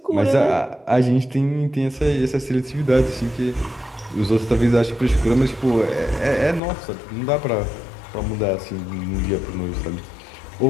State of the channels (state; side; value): drops out; right; at 6.6 s